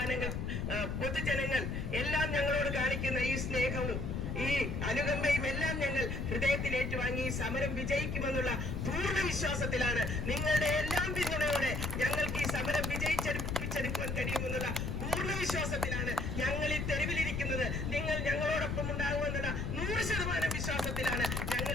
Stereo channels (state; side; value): noise; left; rumble, 2 dB below the sound